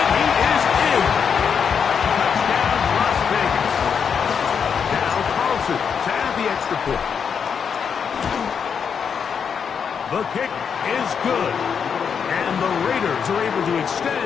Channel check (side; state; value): right; quieter; 6.8 dB